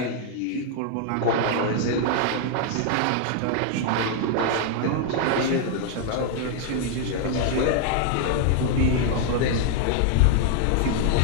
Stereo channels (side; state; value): both; different; correlation 0.00